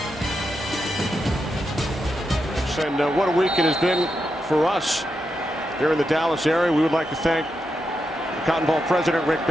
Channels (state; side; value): normal; both; correlation 0.85